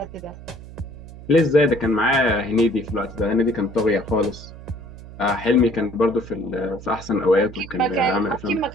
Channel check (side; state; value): right; noise; hum, 15 dB below the sound